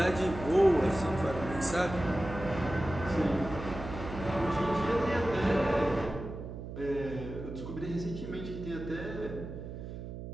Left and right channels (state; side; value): noise; right; hum, 9 dB below the sound